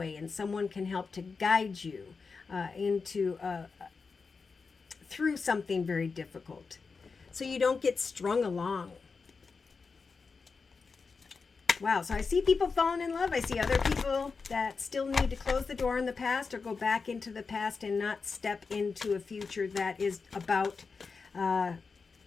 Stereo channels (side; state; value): right; quieter; 4.8 dB